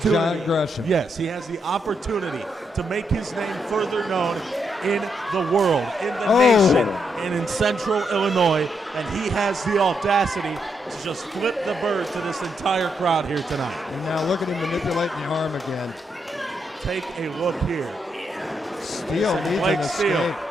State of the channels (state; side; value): normal; both; correlation 0.80